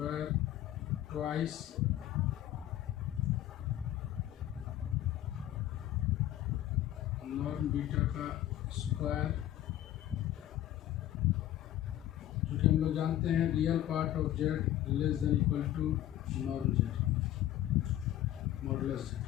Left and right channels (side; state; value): right; quieter; 13.0 dB